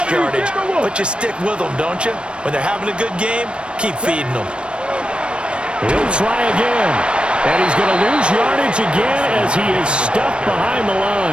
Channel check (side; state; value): left; late; 0.057 ms